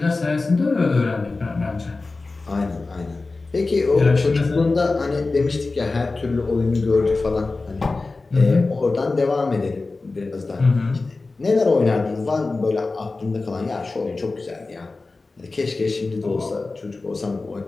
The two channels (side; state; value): right; quieter; 3.6 dB